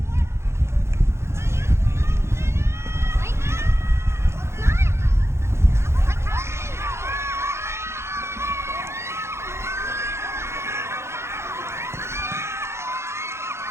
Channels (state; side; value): late; left; 0.13 ms